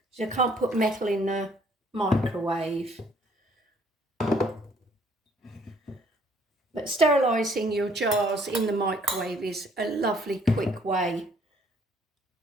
So you can't put metal in the microwave. But sterilising your jars in the microwave is a lovely quick way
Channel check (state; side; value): normal; both; correlation 0.62